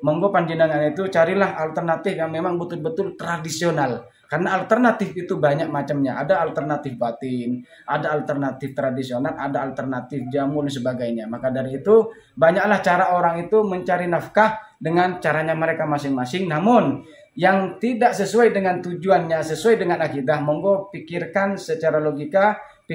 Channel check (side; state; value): both; identical; correlation 1.00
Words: monggo panjenengan itu carilah alternatif yang memang betul-betul tradisional. Karena alternatif itu banyak macamnya. Ada alternatif batin, ada alternatif tradisional, ada alternatif jamu dan sebagainya. Maka dari itu banyaklah cara orang itu mencari nafkah dengan caranya mereka masing-masing. Namun yang tidak sesuai dengan tujuannya, sesuai dengan akidah, monggo pikirkan secara logika,